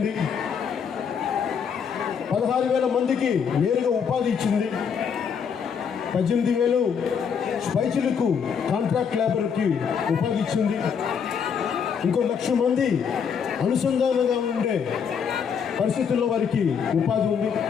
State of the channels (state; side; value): quieter; right; 6.9 dB